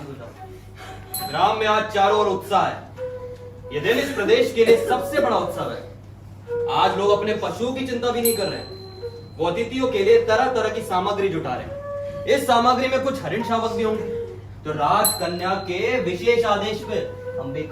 हो जाओ। ग्राम में आज चारों ओर उत्साह है। ये दिन इस प्रदेश के लिए सबसे बड़ा उत्सव है। आज लोग अपने पशुओं की चिंता भी नहीं कर रहे। वो अतिथियों के लिए तरह तरह की सामग्री जुटा रहे हैं। इस सामग्री में कुछ हरिण शावक भी होंगे तो राजकन्या के विशेष आदेश पे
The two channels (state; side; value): identical; both; correlation 1.00